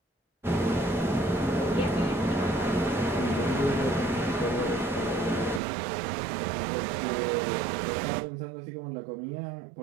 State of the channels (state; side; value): drops out; left; at 5.6 s